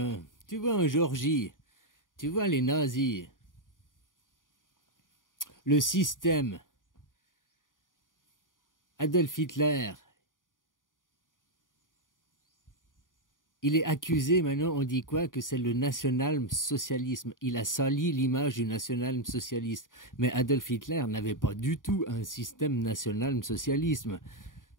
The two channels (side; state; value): right; late; 0.89 ms